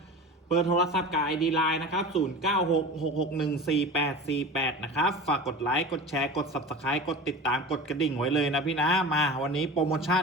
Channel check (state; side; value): normal; both; correlation 0.33